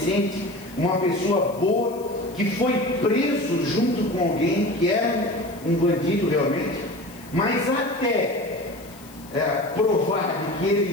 uma pessoa boa, que foi preso junto com alguém que era um bandido realmente, mas até provar de que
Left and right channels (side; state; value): left; noise; hiss, 23 dB below the sound